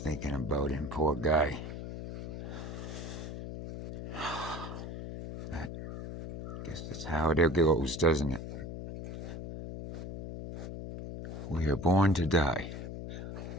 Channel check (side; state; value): left; noise; hum, 8 dB below the sound